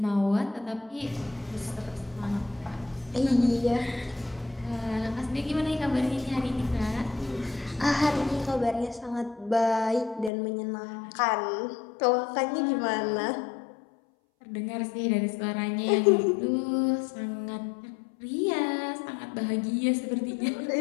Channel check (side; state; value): right; drops out; at 10.3 s